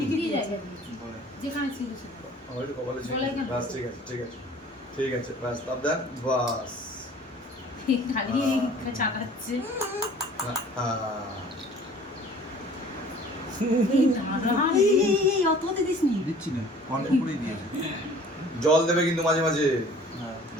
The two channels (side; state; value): both; normal; correlation 0.49